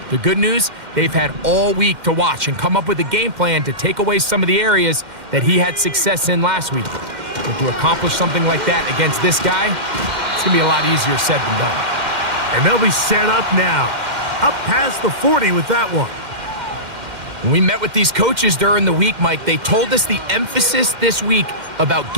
The good news, they've had all week to watch and come up with a game plan to take away some of the areas that he had success in last week. But to accomplish something like that against this guy, it's going to be a lot easier said than done. And they'll be set up now. Up past the 40 with that one. When we met with these coaches during the week, Mike, they told us the emphasis this week about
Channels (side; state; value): left; late; 2.1 ms